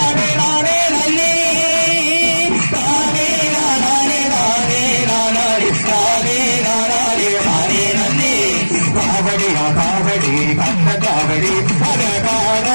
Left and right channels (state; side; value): inverted; both; correlation -1.00